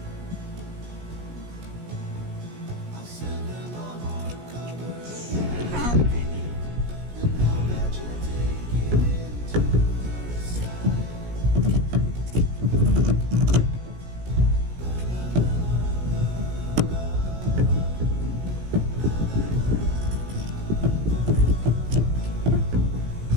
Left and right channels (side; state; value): left; late; 17 ms